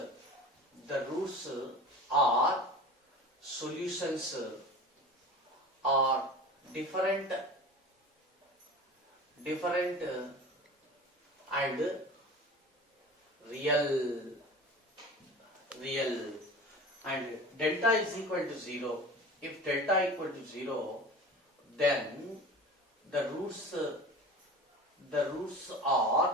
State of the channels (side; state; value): both; normal; correlation 0.36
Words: are solutions are different and real. And delta is equal to 0. If delta equal to 0, then the roots